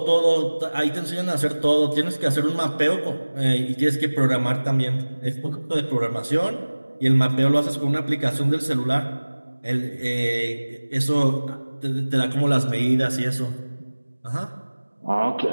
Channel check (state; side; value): inverted; both; correlation -1.00